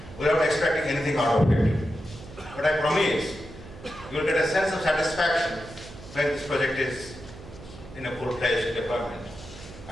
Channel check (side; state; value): right; noise; hum, 16 dB below the sound